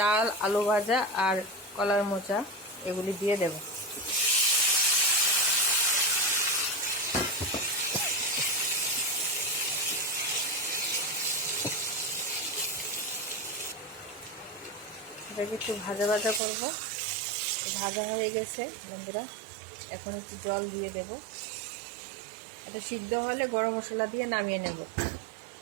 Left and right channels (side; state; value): left; drops out; at 16.4 s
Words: আলু ভাজা আর কলার মোচা, এগুলি দিয়ে দেব। এটাকে একটু ভাজা ভাজা করবো। ভাজা হয়ে গেছে বন্ধুরা, এখন একটু জল দিয়ে দেব। এটা সিদ্ধ হলে গরম মশলা দিয়ে নামিয়ে নেব।